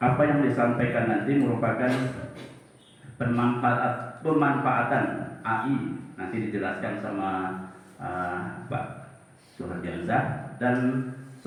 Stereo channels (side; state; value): both; identical; correlation 1.00